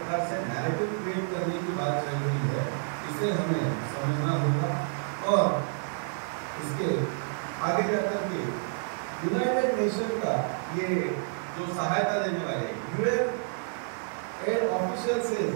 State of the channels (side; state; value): left; silent; 58 dB below the other